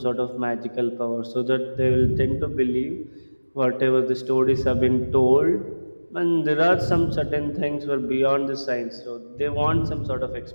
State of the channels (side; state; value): both; inverted; correlation -1.00